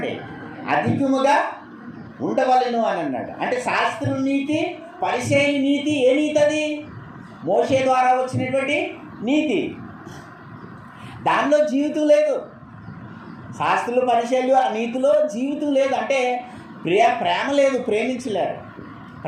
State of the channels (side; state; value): both; identical; correlation 1.00